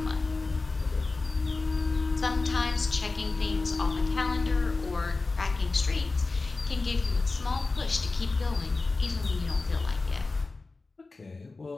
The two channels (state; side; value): quieter; right; 3.6 dB